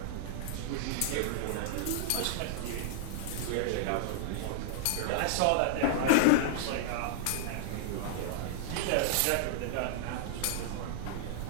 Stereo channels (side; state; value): both; different; correlation -0.01